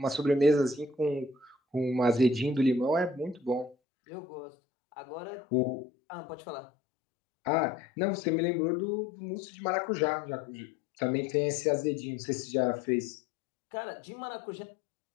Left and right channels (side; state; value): right; drops out; at 3.8 s